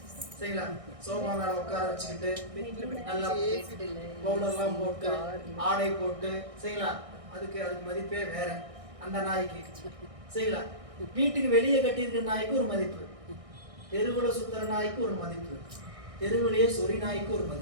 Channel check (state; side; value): late; left; 1.6 ms